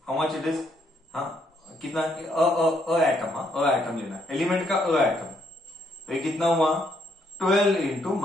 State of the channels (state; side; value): normal; both; correlation 0.72